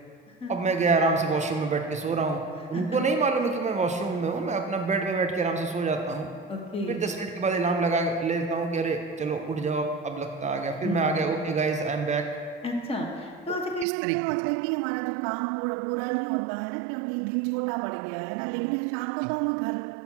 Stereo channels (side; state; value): left; drops out; at 13.9 s